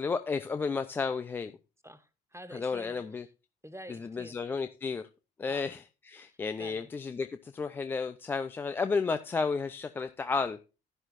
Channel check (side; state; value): right; quieter; 4.4 dB